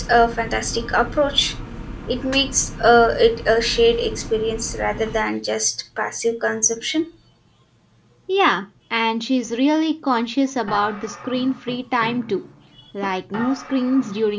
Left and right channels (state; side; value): identical; both; correlation 1.00